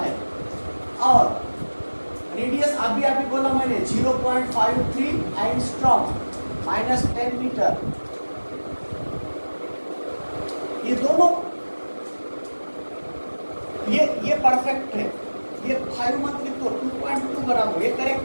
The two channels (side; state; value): both; inverted; correlation -1.00